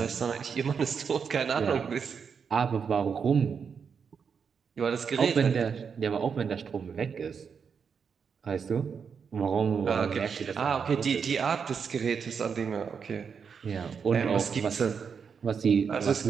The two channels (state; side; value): quieter; left; 6.4 dB